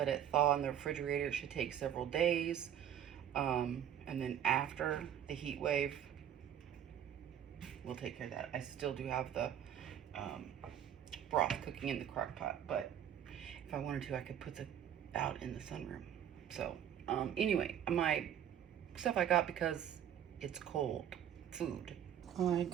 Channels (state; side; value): quieter; left; 9.8 dB